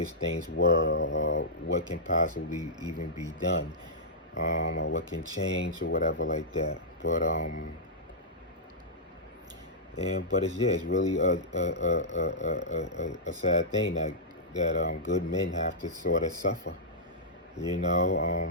things were, or what can possibly even be done, or what can change or whatever like that. But it's really a sad thing that good men have to sort of suffer,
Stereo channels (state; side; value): normal; both; correlation -0.13